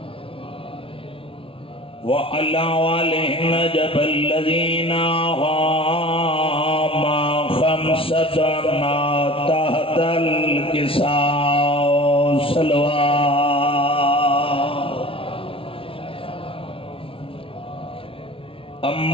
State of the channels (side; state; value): right; late; 0.26 ms